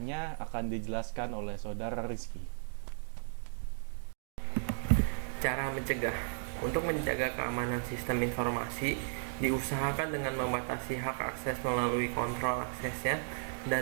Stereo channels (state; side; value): silent; left; digital silence